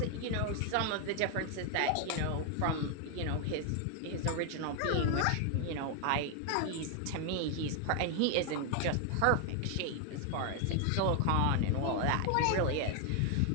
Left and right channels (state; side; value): different; both; correlation 0.01